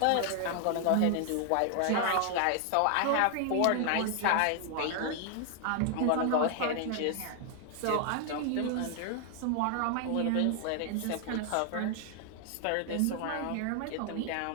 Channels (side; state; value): both; different; correlation 0.00